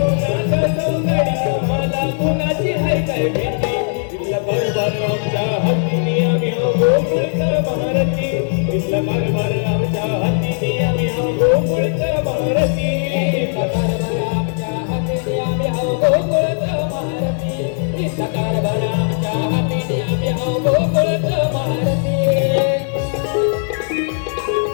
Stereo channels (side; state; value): right; silent; digital silence